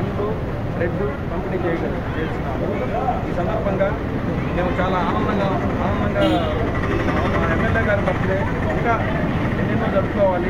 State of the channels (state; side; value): identical; both; correlation 1.00